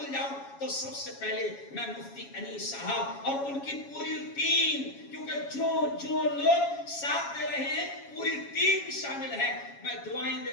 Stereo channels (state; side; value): late; right; 7.2 ms